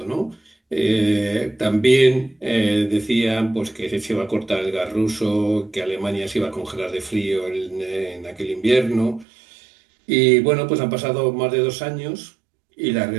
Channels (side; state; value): left; drops out; at 9.2 s